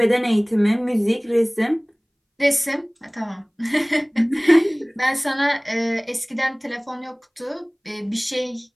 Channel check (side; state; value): both; identical; correlation 1.00